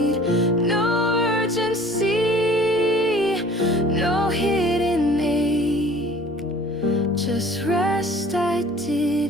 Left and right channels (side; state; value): left; noise; rumble, 30 dB below the sound